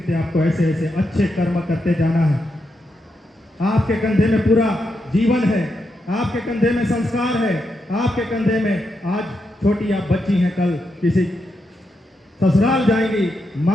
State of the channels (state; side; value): normal; both; correlation 0.84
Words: आपको ऐसे ऐसे अच्छे कर्म करते जाना है। आपके कंधे में पूरा जीवन है, आपके कंधे में संस्कार है, आपके कंधे में आज छोटी आप बच्ची हैं, कल किसी ससुराल जाएंगी,